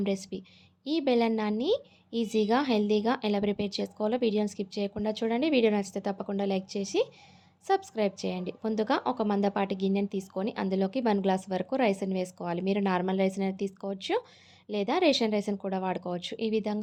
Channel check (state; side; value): identical; both; correlation 1.00